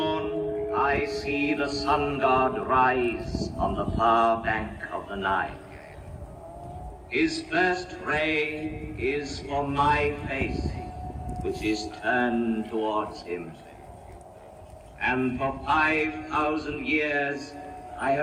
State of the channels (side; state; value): both; identical; correlation 1.00